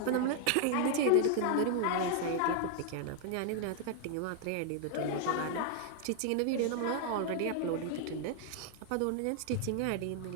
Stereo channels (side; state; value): both; different; correlation 0.00